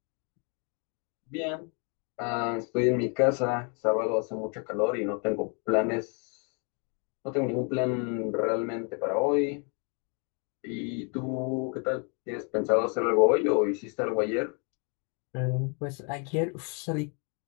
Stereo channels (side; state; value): right; quieter; 37.3 dB